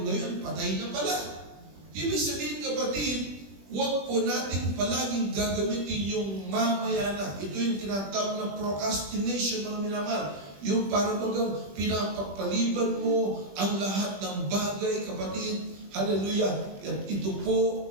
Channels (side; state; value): left; late; 20 ms